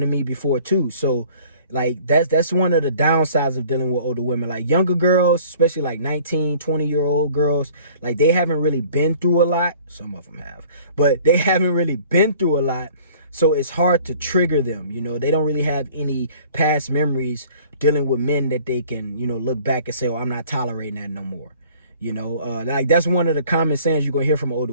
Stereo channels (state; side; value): inverted; both; correlation -0.51